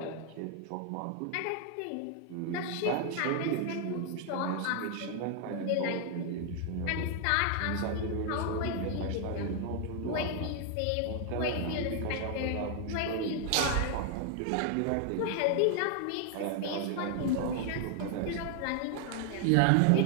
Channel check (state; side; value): different; both; correlation 0.00